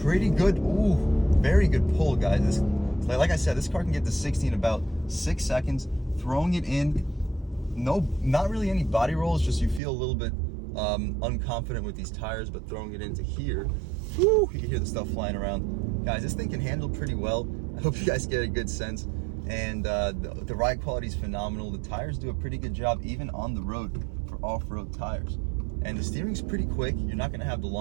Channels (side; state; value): left; drops out; at 9.8 s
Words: pretty good. Ooh, very good pull, guys. like I said, this car can get to 60 in about 6 seconds. Throwing it in, not really any body rolls, just you feel a little bit unconfident with these tires, but throwing it into here, whoo, you can hear the stuff flying around. Guys, this thing can handle pretty well. I hope you guys get a good sense. And the ride quality is phenomenal. The tires do a pretty good job, even on the road, for off-road tires. And the steering's pretty quick. You're not gonna have the